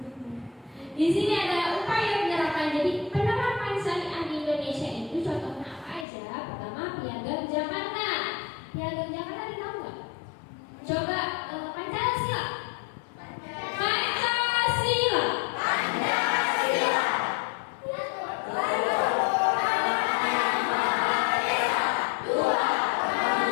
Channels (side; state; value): right; drops out; at 6.1 s